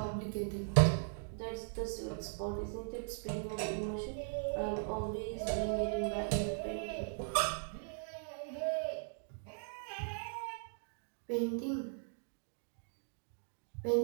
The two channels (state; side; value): silent; left; digital silence